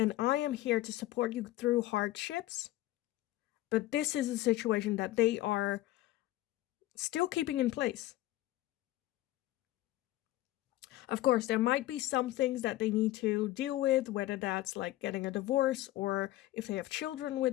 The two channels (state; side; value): quieter; right; 16.1 dB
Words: I am here to support you through hardships. But this is a situation that they are still keeping in place. Of course, there might be some things that they need to deal with, whether that's like getting a divorce or if they have children